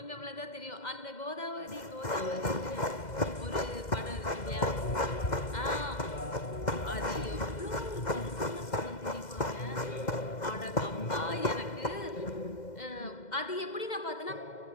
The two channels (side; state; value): right; late; 2.1 ms